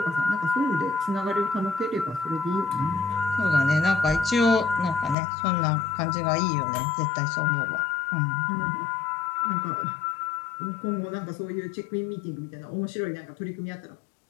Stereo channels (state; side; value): drops out; right; at 5.2 s